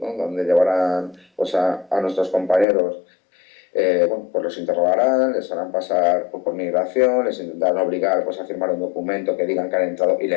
Donde llevarán pues a nuestros compañeros. Bueno, pues los interrogarán, les harán pasar por migración, les intentarán obligar pues, a firmar un documento que digan que han entrado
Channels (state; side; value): drops out; right; at 2.7 s